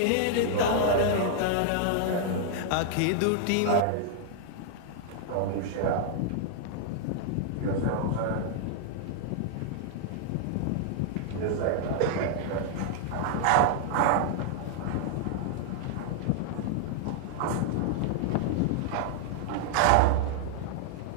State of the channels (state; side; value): different; both; correlation -0.01